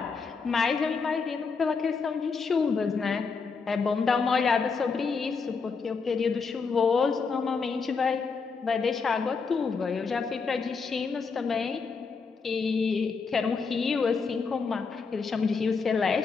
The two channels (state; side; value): quieter; right; 5.0 dB